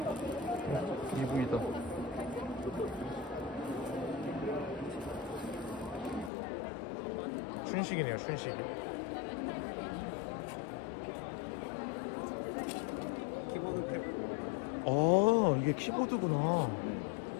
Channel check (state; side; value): drops out; right; at 6.3 s